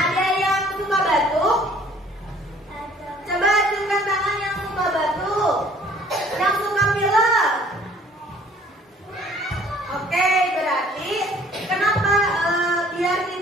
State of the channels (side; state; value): both; normal; correlation 0.56